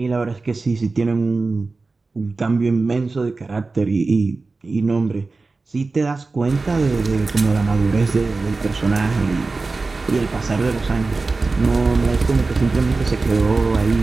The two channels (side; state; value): left; quieter; 3.8 dB